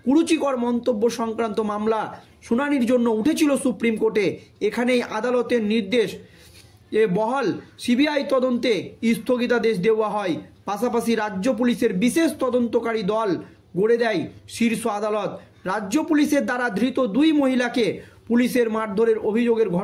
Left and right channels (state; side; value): identical; both; correlation 1.00